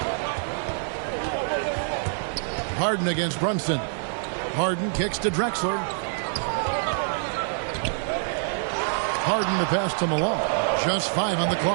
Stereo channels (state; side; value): silent; left; digital silence